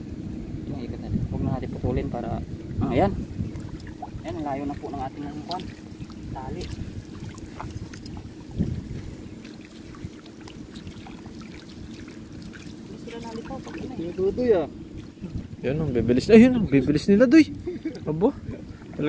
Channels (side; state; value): both; identical; correlation 1.00